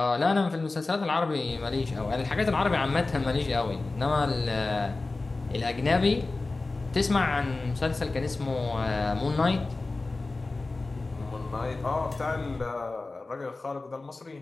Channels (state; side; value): quieter; right; 3.4 dB